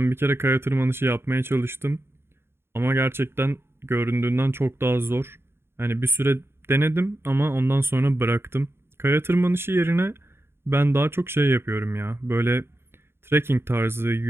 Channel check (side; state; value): left; late; 0.11 ms